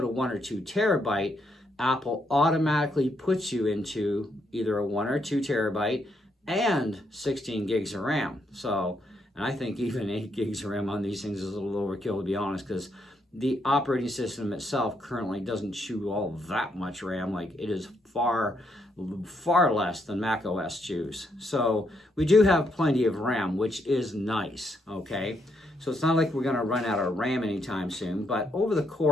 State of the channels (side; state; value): both; normal; correlation 0.76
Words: to 1 or 2 terabyte, Apple automatically puts you into either a 1 or 2 terabyte and 16 gigs of RAM. So, and I think even 8 gigs of RAM on these things is a little overkill, to be honest, because the operating system itself currently doesn't chew all that much RAM. Like, it is far less than Mac OS chews. So we do have plenty of RAM, which is nice, okay? So it's not like we're going to run out of RAM anytime soon, but over the